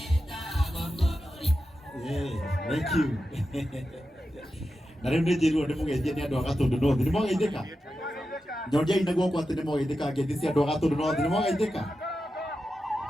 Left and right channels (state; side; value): normal; both; correlation 0.90